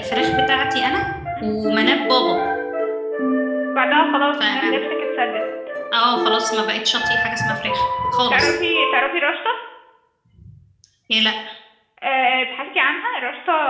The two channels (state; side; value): identical; both; correlation 1.00